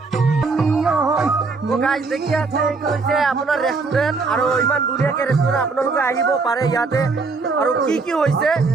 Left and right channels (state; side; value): quieter; left; 4.2 dB